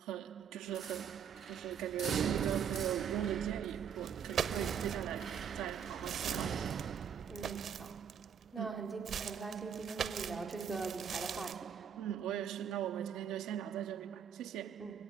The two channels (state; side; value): quieter; left; 7.9 dB